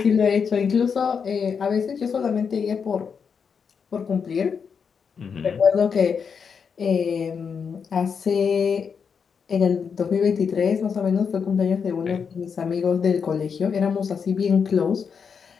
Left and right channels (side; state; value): right; quieter; 6.3 dB